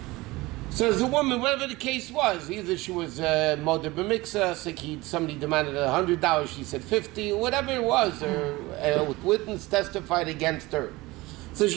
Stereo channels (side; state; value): left; quieter; 21.0 dB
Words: So as a woman, whatever the case was, either she was Moder B'Miksa, somebody demanded $100, she said $50, whatever it was, or witness testified against her. So